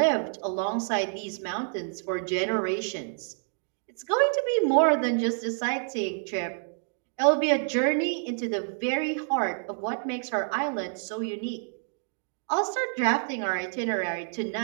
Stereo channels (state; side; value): silent; left; 59 dB below the other